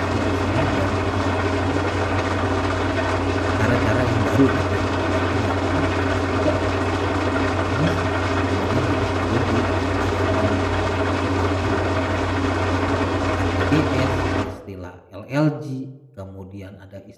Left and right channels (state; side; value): identical; both; correlation 1.00